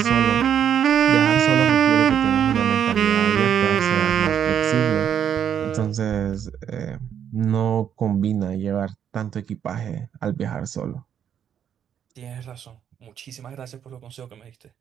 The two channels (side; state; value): left; quieter; 8.9 dB